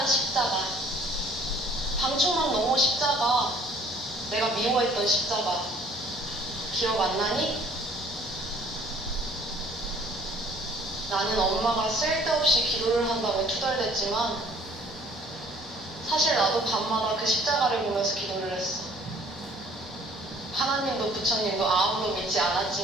십자가. 방충망 너머 십자가. 내가 미워했던 십자가. 기억 안 나니? 나는 엄마가 쓸데없이 기도를 한다며 투덜댔지만 사실 나도 밤마다 그 십자가를 보면서 기도를 했어. 하나님도 부처님도 아무도 믿지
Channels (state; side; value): normal; both; correlation 0.56